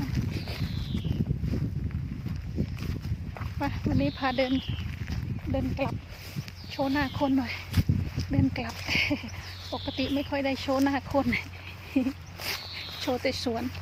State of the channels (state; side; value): identical; both; correlation 1.00